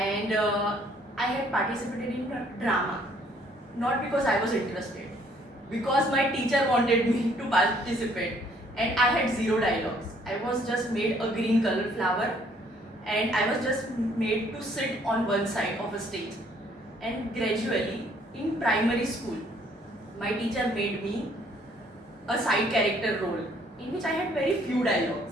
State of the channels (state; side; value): normal; both; correlation 0.63